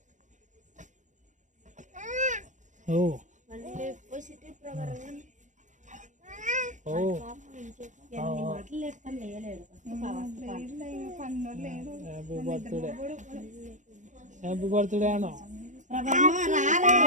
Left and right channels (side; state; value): left; late; 0.36 ms